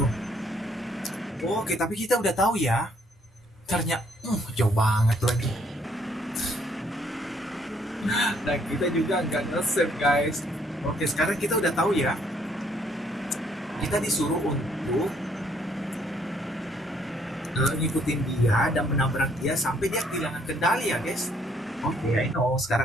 Oke, tapi kita udah tahu ya. Ternyata, jauh banget lagi. Dan kita juga nggak nge-save, guys. Oke, sekarang kita udah tahu ya. Kita disuruh untuk ngikutin dia dan menabrak dia sampai dia kehilangan kendali ya guys. Oke, I know.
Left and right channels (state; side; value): normal; both; correlation 0.67